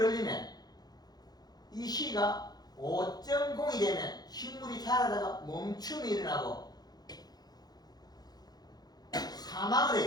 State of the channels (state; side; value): late; right; 0.19 ms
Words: 이 시가 5.0이 되면 식물이 자라다가 멈춤이 일어나고 사망을